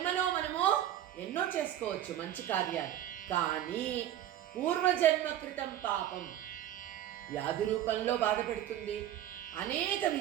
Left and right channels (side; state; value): left; quieter; 11.8 dB